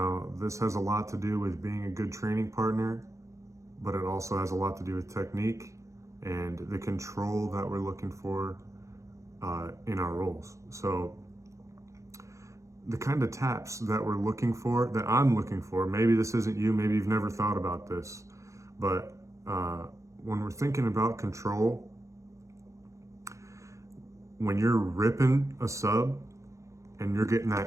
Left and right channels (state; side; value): late; left; 0.15 ms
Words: this has a lot to do with being a good training partner, but it also has a lot to do with technique and the control that we're looking for in our rolls. So, the kind of taps that we're looking for, that I'm looking for, maybe this isn't you, maybe you've never thought about this, but when we're thinking about control, when you're ripping a sub and you're getting